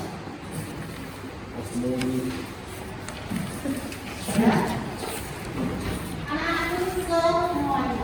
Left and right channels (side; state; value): both; identical; correlation 1.00